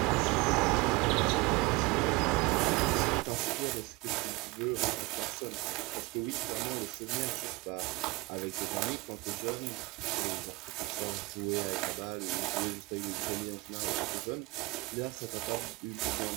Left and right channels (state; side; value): quieter; left; 23.5 dB